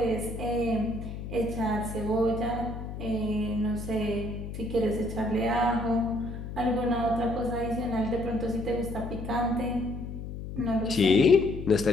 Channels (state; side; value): noise; left; hum, 8 dB below the sound